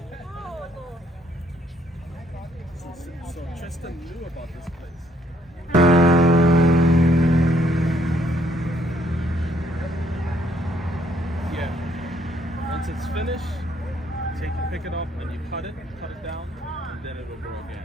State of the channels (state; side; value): normal; both; correlation 0.68